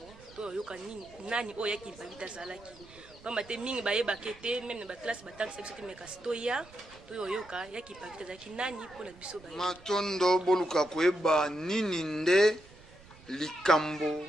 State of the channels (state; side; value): noise; right; rumble, 23 dB below the sound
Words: to oyoka nani oyo yaki mpavita azalaki pamba te mingi bayebake te meme na baklase batangisa biso te me kasi toya toyoyoka yaki mpavita azalaki nani mpona biso matondo boluka koyeba nini nde likambo